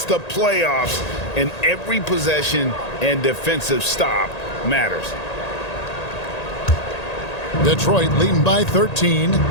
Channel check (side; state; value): right; late; 1.8 ms